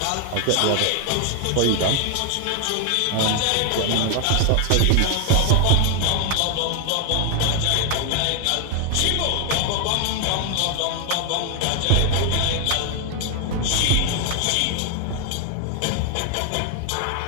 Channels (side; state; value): both; different; correlation 0.00